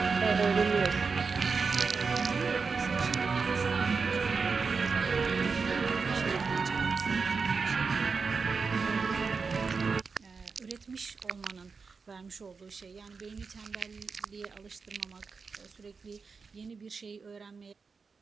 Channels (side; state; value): left; quieter; 5.0 dB